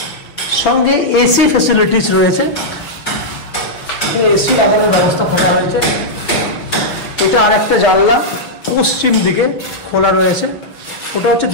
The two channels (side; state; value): right; late; 6.1 ms